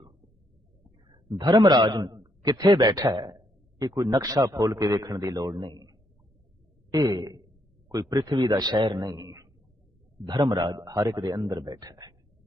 धर्मराज किथे बैठा है ये कोई नक्शा फोल के देखने की लोड़ नहीं, ये कोई पृथ्वी का शहर नहीं। धर्मराज हर एक दे अंदर बैठा है।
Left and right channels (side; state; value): both; normal; correlation 0.74